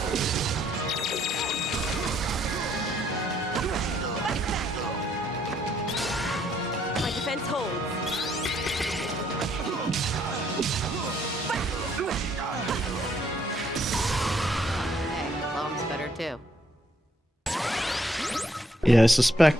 My defense holds. Hey, bomb's better too. Yeah, I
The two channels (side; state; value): both; normal; correlation 0.69